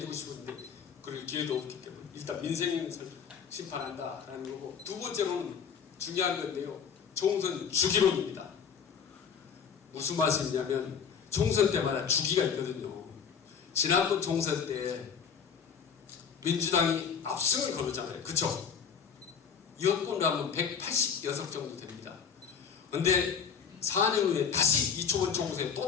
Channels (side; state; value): right; quieter; 6.9 dB